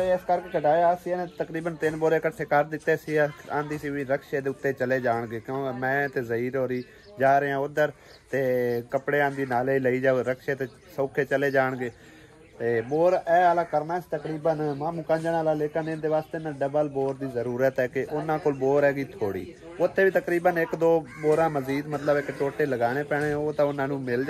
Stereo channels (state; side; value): identical; both; correlation 1.00